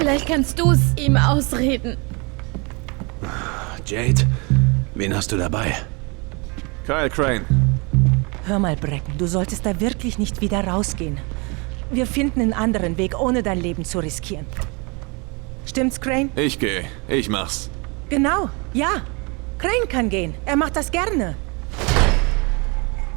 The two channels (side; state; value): left; quieter; 29.9 dB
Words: kannst du's ihm ausreden. Jade, wen hast du dabei? Kyle Crane. Hör mal, Bracken, du solltest da wirklich nicht wieder rausgehen. Wir finden einen anderen Weg, ohne dein Leben zu riskieren. Stimmt's, Crane? Ich gehe. Ich mach's. Genau, ja. Crane kann gehen. Er macht das gerne.